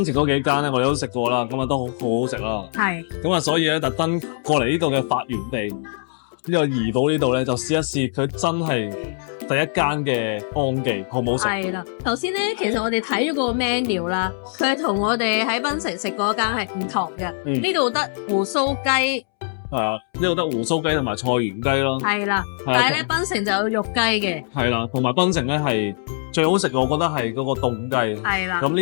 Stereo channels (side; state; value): right; silent; 64 dB below the other